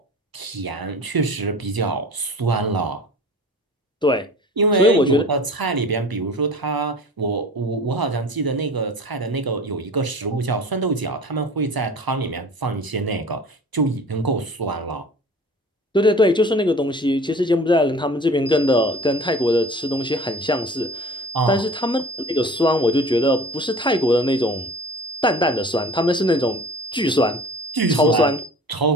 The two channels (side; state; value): both; normal; correlation 0.42